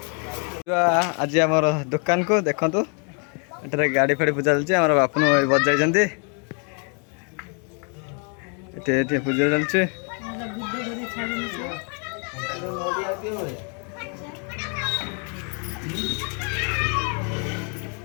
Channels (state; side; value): quieter; right; 38.5 dB